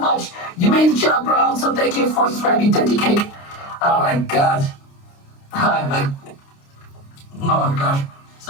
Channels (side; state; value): right; late; 29 ms